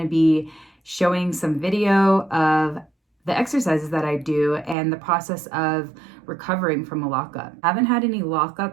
to be showing some video of the exercises that I do and the process of recovering from a lockup. I haven't had any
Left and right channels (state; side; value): drops out; left; at 4.8 s